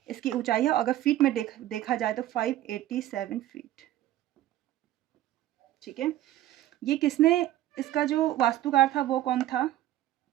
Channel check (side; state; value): left; quieter; 13.8 dB